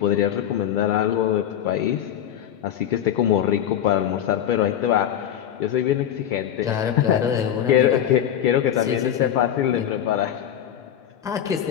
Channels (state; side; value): quieter; right; 10.2 dB